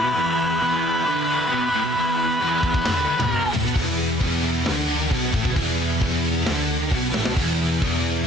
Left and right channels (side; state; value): both; normal; correlation 0.61